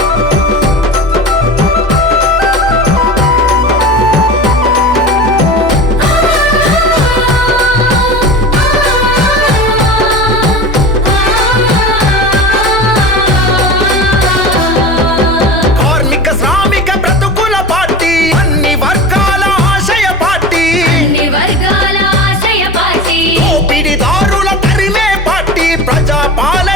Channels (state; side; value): normal; both; correlation 0.31